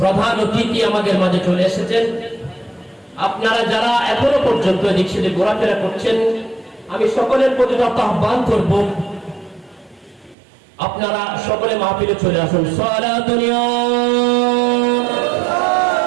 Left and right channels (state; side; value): drops out; left; at 10.4 s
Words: অতিথি আমাদের মাঝে চলে এসেছেন। আপনারা যারা এখনো পর্যন্ত এদিক সেদিক ঘোরাফেরা করছেন, আমি সকলের প্রতি আহ্বান করব আপনারা সকলে মাহফিলে চলে আসুন। সালাতুন ইয়া